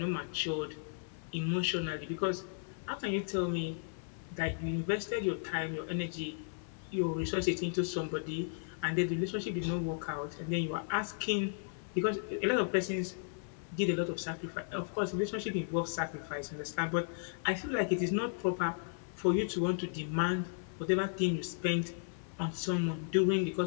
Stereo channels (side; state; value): right; silent; 54 dB below the other